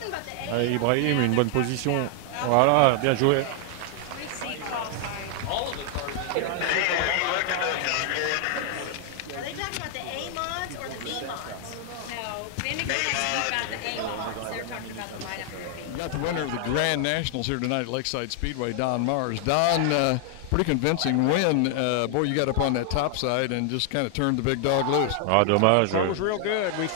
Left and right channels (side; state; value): both; different; correlation 0.00